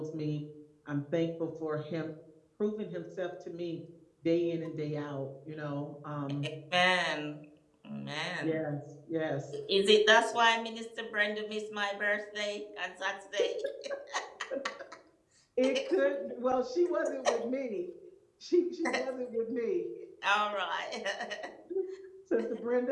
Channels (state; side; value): identical; both; correlation 1.00